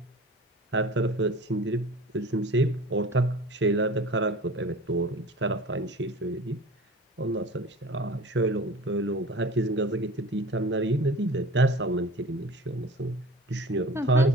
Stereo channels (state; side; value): normal; both; correlation 0.40